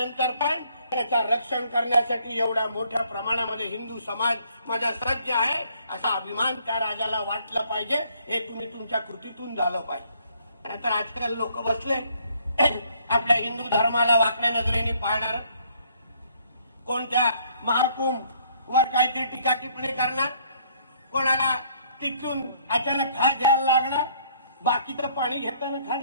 पण त्याचं रक्षण करण्यासाठी एवढ्या मोठ्या प्रमाणामध्ये हिंदू समाज माझा सज्ज आहे, असा अभिमान त्या राजाला वाटला पाहिजे. हे तुम्ही तुमच्या कृतीतून झालं पाहिजे. नाहीतर आजकाल लोक बसले आपल्या हिंदू धर्माला वाकड्या नजरेने पाहणार, कोणत्या महाकुंभ वर काहीतरी टीका टिप्पणी करणार, कोणाला तिथून अचानक खास द्यायला लागणार. बाकीचं पाणी घेताना खास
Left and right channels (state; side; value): inverted; both; correlation -0.64